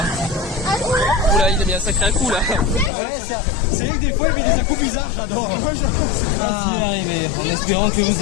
Oula, il a mis un sacré coup là. Ouais, c'est vrai que des fois il met des coups bizarres, j'adore. Merci d'arriver, en espérant que vous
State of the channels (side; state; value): right; drops out; at 2.9 s